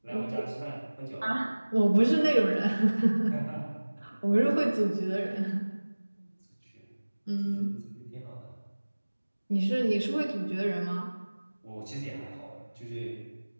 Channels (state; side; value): inverted; both; correlation -1.00